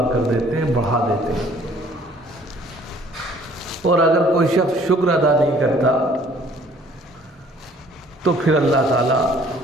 کر دیتے ہیں، بڑھا دیتے ہیں. اور اگر کوئی شخص شکر ادا نہیں کرتا تو پھر اللہ تعالیٰ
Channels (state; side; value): normal; both; correlation 0.57